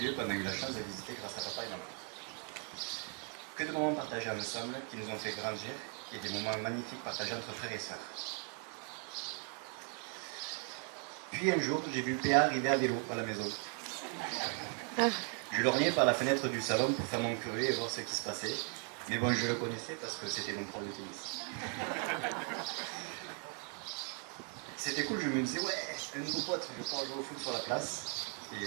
qu'on a eu la chance de visiter grâce à papa et maman. Que de moments partagés ensemble qui nous ont fait grandir et des moments magnifiques partagés entre frères et sœurs. Puis un jour, j'ai vu Péa arriver à vélo à la maison. Je lorgnais par la fenêtre du salon pour faire mon curieux et voir ce qui se passait. Mais bon, je le connaissais parce que c'était mon prof de tennis. C'était cool, je me disais, ouais, un nouveau pote, je vais pouvoir jouer au foot sur la place. Et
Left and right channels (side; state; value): left; quieter; 38.8 dB